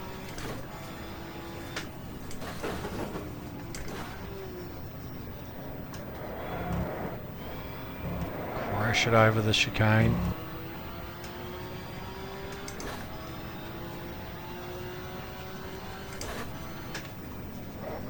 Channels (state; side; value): identical; both; correlation 1.00